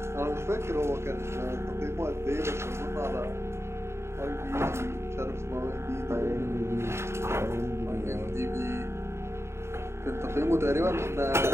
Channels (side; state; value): left; late; 0.13 ms